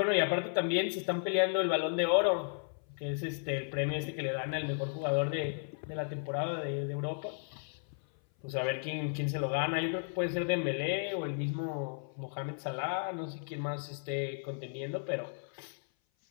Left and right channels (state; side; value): silent; right; 55 dB below the other